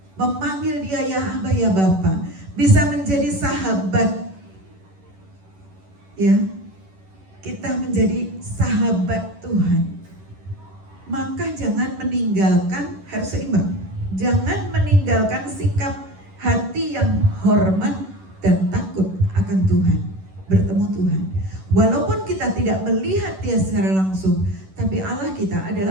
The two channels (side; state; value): left; late; 11 ms